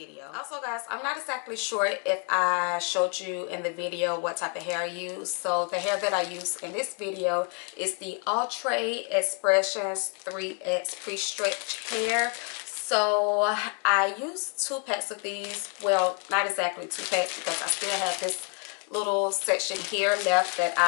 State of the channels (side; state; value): right; quieter; 39.8 dB